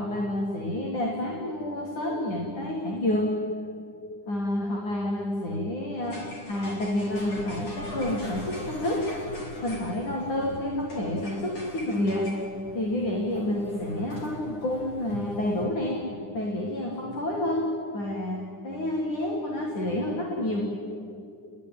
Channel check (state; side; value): late; right; 9.9 ms